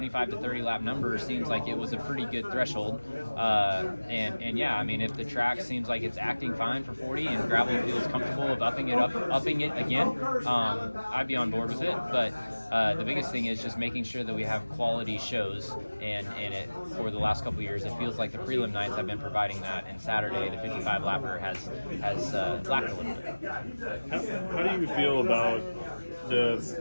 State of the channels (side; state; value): both; inverted; correlation -1.00